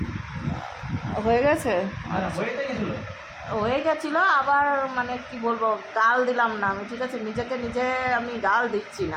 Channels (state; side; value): identical; both; correlation 1.00